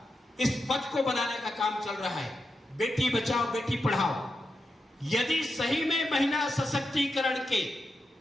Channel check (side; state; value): both; normal; correlation 0.87